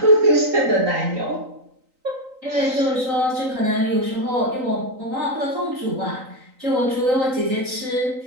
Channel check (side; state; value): left; late; 3.9 ms